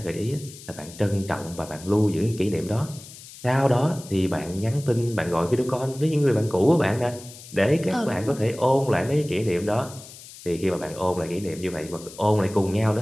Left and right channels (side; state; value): left; noise; hiss, 17 dB below the sound